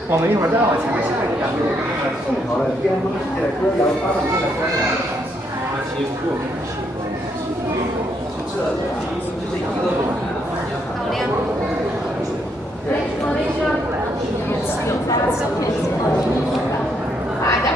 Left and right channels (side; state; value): both; normal; correlation 0.75